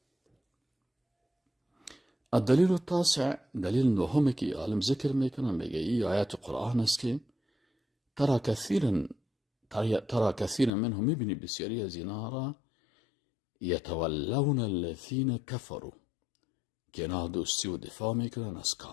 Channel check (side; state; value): right; drops out; at 10.7 s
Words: الدلیل التاسع، دلیل نهم که عالم ذکر میکنه، میگه این آیات قرآن است که ترى كثيرا منهم، میبینی بسیاری از اینا را یتولون الذین کفروا، که اینا دوستی و دفاع میکنن از